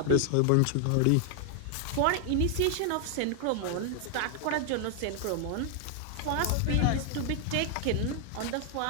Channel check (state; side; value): different; both; correlation 0.00